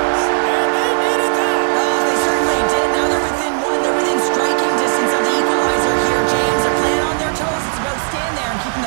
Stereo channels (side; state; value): left; silent; 56 dB below the other